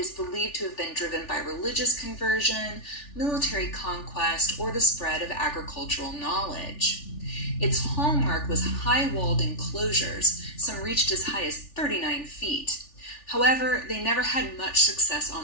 believed to have been driven by religious conversion, military conquest, or the spread of agricultural knowledge. Its hallmark was high-walled enclosures, some reached as high as 39 feet. However, they never had much success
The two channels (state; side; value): late; right; 3.4 ms